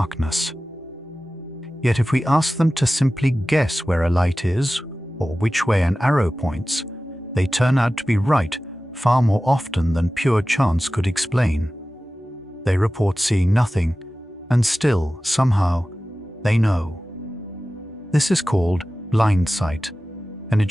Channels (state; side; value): normal; both; correlation 0.96